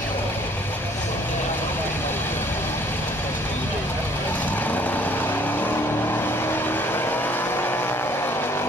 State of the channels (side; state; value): both; normal; correlation 0.59